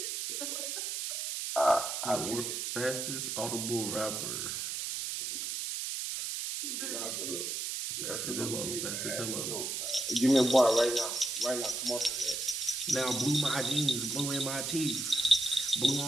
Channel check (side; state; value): right; noise; hiss, 3 dB below the sound